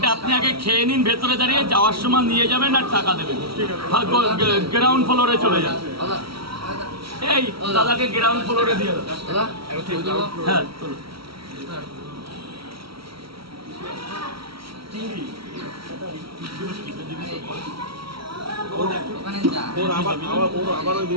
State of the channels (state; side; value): late; left; 0.75 ms